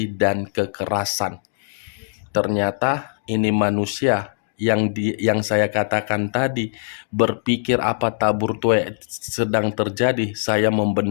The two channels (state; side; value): silent; right; digital silence